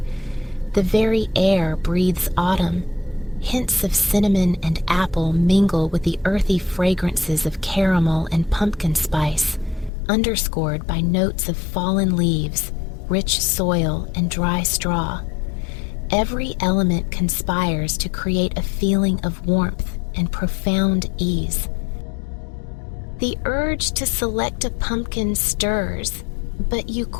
The very air breathes autumn. Hints of cinnamon and apple mingle with the earthy fragrances of caramel and pumpkin spice, underscored by notes of fallen leaves, rich soil, and dry straw. Every element conspires to create a feeling of warmth and profound ease. The urge to select a pumpkin stirs, but you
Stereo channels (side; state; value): right; drops out; at 9.9 s